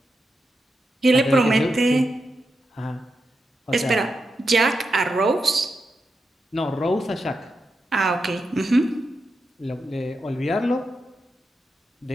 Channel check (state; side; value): normal; both; correlation 0.87